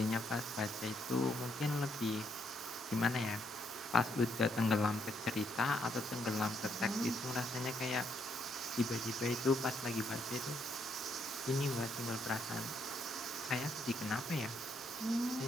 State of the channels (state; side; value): normal; both; correlation 0.74